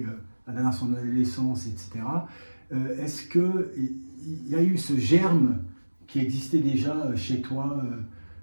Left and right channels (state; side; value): inverted; both; correlation -1.00